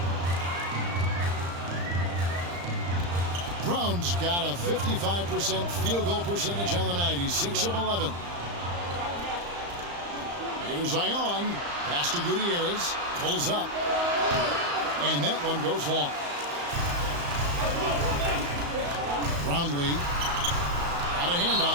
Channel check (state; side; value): late; left; 35 ms